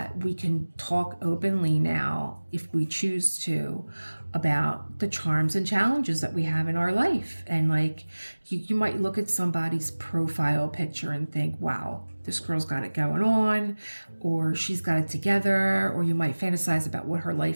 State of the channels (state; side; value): inverted; both; correlation -1.00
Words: we can talk openly now, if we choose to, about the charms and challenges that we have in our life. And like, you might look at somebody's profile picture and think, wow, this girl's got it going on, or she's got it together, or you might fantasize about what her